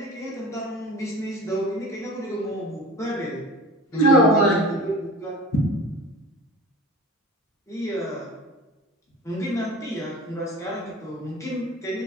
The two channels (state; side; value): normal; both; correlation 0.37